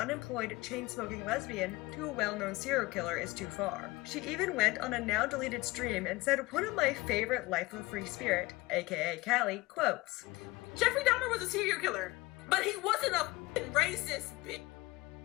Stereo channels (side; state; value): right; quieter; 21.4 dB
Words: chain-smoking lesbian to a well-known serial killer is too far. She even went on a now-deleted stream and said one of my favorite Lyfeofafreespirit, aka Callie, quotes, Jeffrey Dahmer was a serial killer, but he wasn't a racist bitch.